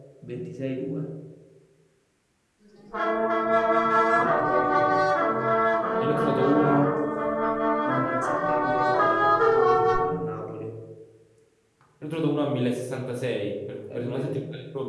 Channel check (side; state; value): both; identical; correlation 1.00